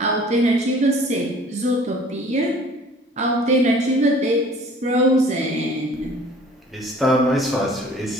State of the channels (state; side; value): normal; both; correlation 0.50